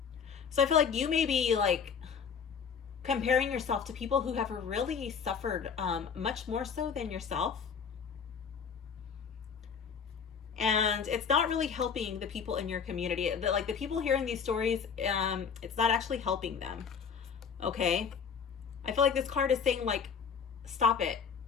So I feel like you may be like comparing yourself to people who have really suffered much more so than yourself. And it's not really helping the people in your community. Like the people hearing these stories, it's not actually helping them. Okay? I feel like this card is saying like, stop it.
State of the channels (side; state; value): right; quieter; 6.6 dB